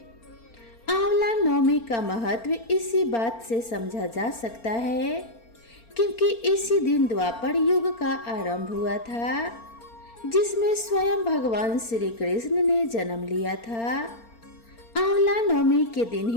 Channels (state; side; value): late; right; 4.4 ms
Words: आंवला नवमी का महत्व इसी बात से समझा जा सकता है क्योंकि इसी दिन द्वापर युग का आरंभ हुआ था, जिसमें स्वयं भगवान श्री कृष्ण ने जन्म लिया था। आंवला नवमी के दिन